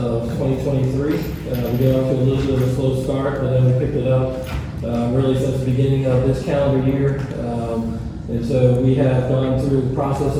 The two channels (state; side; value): identical; both; correlation 1.00